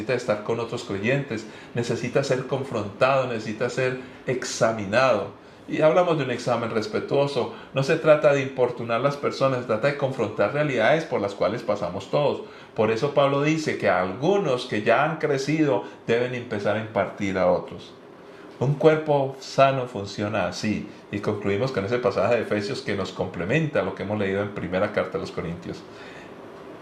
estar con otros creyentes, necesitas ser confrontado, necesitas ser examinado. Y hablamos de un examen respetuoso. No se trata de importunar a las personas, se trata de confrontar realidades por las cuales pasamos todos. Por eso Pablo dice que algunos que ya han crecido deben empezar a impartir a otros. Un cuerpo sano funciona así. Y concluimos con ese pasaje de Efesios que nos complementa lo que hemos leído en primera carta de los Corintios.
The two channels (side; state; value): both; identical; correlation 1.00